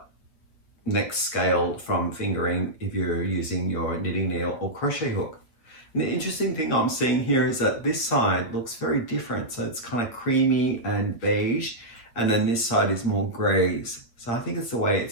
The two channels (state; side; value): late; right; 8.4 ms